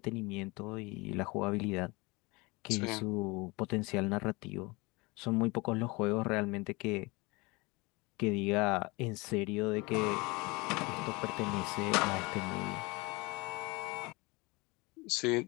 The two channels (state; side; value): quieter; right; 25.1 dB